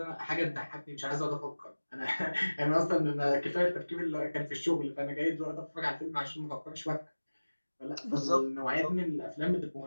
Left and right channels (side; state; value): both; inverted; correlation -1.00